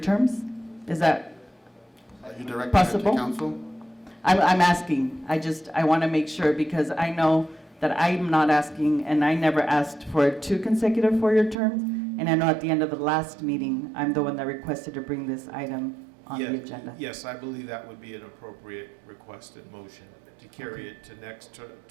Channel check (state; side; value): drops out; left; at 11.6 s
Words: terms? Is that Are you directing that to possible? council? I'm asking. I want to make sure, because I know that I'm not asking, and I never asked for 2 consecutive 4-year terms. And I know at the end of the last meeting, I'm the one that requested to bring this item on the agenda. Yes, I believe that would be an appropriate request and motion to carry it to the